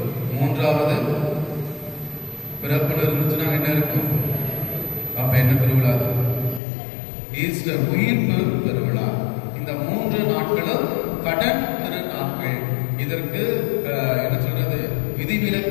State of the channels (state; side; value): drops out; right; at 6.6 s